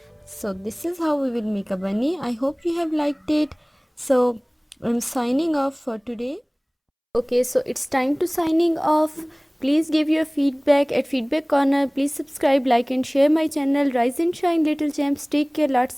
So this is how we will make a bunny. I hope you have liked it. So I'm signing off for today. Okay, so it's time to signing off. Please give your feedback at Feedback Corner. Please subscribe, like and share my channel. Rise and shine, little gems. Take care.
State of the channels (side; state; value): both; identical; correlation 1.00